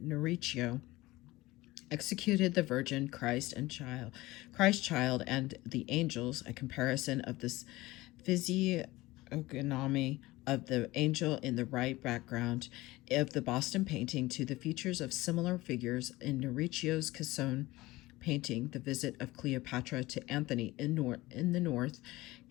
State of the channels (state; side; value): quieter; right; 19.3 dB